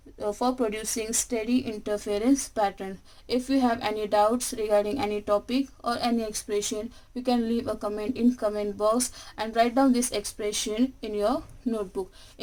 for producing steady interference pattern. If you have any doubts regarding any topic or any expression, you can leave a comment in comment box and write down this expression in your notebook.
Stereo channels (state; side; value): identical; both; correlation 1.00